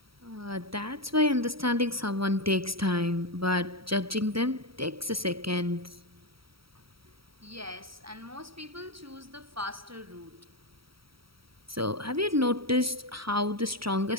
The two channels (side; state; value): left; late; 0.75 ms